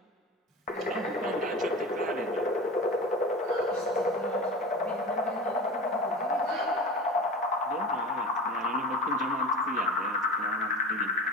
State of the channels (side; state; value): both; normal; correlation 0.33